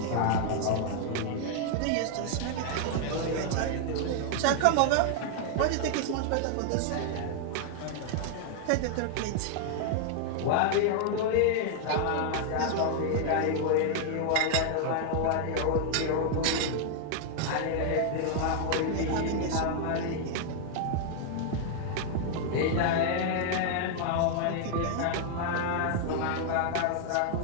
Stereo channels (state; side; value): different; both; correlation 0.00